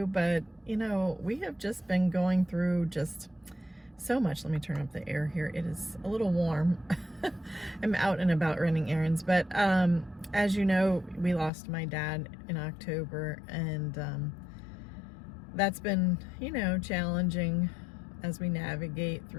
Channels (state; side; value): drops out; right; at 11.5 s